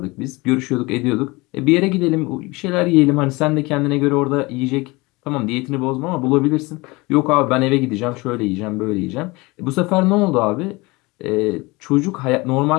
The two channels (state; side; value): quieter; right; 23.7 dB